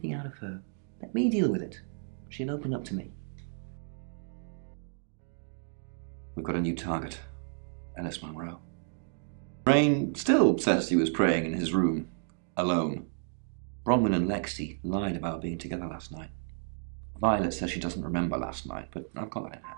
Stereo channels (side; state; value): left; silent; 57 dB below the other